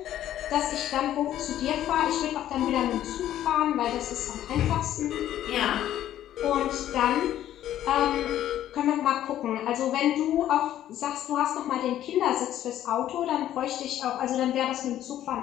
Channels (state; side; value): quieter; right; 12.1 dB